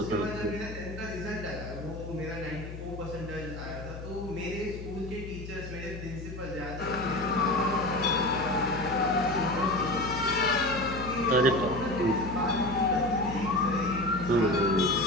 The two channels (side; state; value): left; noise; hum, 10 dB below the sound